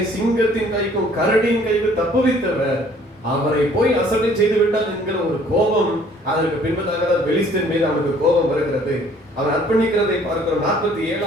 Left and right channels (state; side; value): normal; both; correlation 0.57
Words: சிங்கத்தின் கைக்கும் கரடியின் கைக்கும் தப்புவித்தவர், அவரை போய் அசட்டை செய்து விட்டான் என்கிற ஒரு கோபம். அதற்கு பின்பதாக பெலிஸ்தீன் மீது அவனுக்கு கோபம் வருகிறது. அவன் அர்ப்பணிக்கிறதை பார்க்கிறோம்.